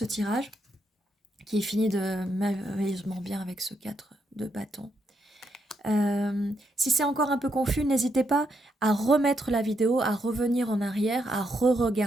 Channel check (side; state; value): both; normal; correlation 0.79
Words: tirage, qui est fini de merveilleusement bien avec ce 4 de bâton. Si c'est encore un peu confus, n'hésitez pas à remettre la vidéo, à revenir en arrière, à